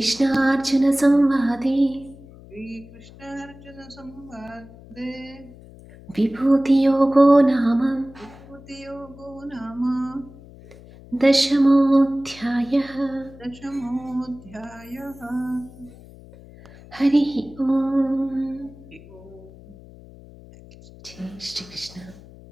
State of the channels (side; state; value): left; noise; hum, 20 dB below the sound